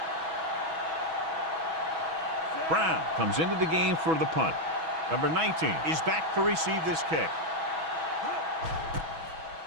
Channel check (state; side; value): late; left; 6.2 ms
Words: Brown comes into the game for the punt. Number 19 is back to receive this kick.